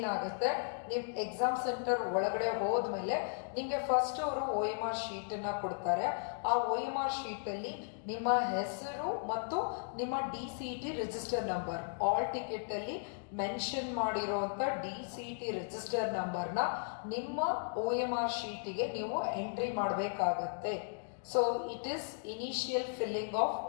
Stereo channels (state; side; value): silent; right; digital silence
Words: ನೀವು ಎಕ್ಸಾಮ್ ಸೆಂಟರ್ ಒಳಗಡೆ ಹೋದ್ಮೇಲೆ ನಿಮಗೆ ಫಸ್ಟ್ ಅವರು OMR ಶೀಟನ್ನು ಕೊಡ್ತಾರೆ. ಆ OMR ಶೀಟಲ್ಲಿ ನಿಮ್ಮ ಹೆಸರು ಮತ್ತು ನಿಮ್ಮ DCET ರಿಜಿಸ್ಟರ್ ನಂಬರ್, ಆಲ್ ಟಿಕೆಟಲ್ಲಿ ಮೆನ್ಷನ್ ಮಾಡಿರುವಂಥ DCET ರಿಜಿಸ್ಟರ್ ನಂಬರ್ನ ನಿಮ್ಮ OMR ಶೀಟಿಗೆ ನೀವು ಎಂಟ್ರಿ ಮಾಡಬೇಕಾಗತ್ತೆ. So it is initial filling of